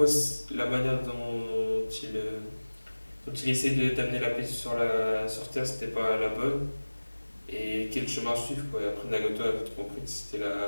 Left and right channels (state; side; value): inverted; both; correlation -1.00